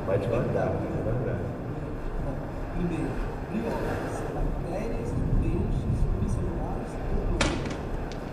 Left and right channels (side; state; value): both; identical; correlation 1.00